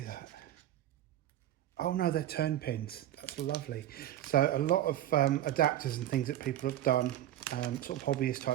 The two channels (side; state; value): left; quieter; 12.7 dB